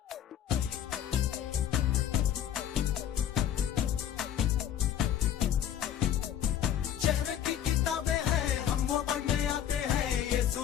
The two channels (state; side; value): quieter; right; 10.1 dB